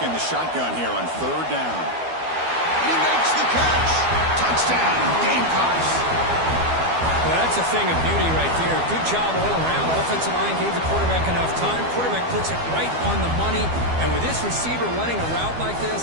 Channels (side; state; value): left; late; 12 ms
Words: the shotgun here on third down. He makes the catch. Touchdown, Gamecocks. Well, that's a thing of beauty right there. Good job all around. Offensive line gave the quarterback enough time. Quarterback puts it right on the money. And with this receiver running a route like